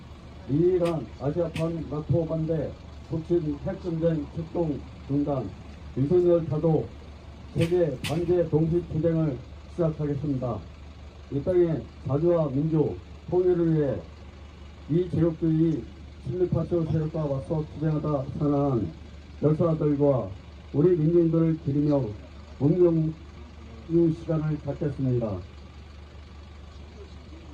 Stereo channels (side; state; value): both; identical; correlation 1.00